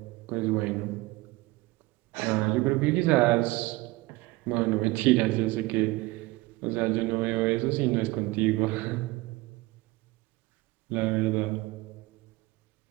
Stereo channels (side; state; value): left; quieter; 21.2 dB